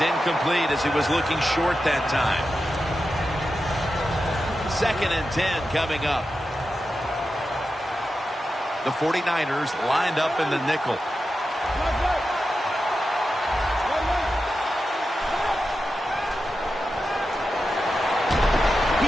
incomplete as he was looking short that time. 2nd and 10 coming up. The 49ers lined up in the nickel.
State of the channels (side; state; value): both; normal; correlation 0.90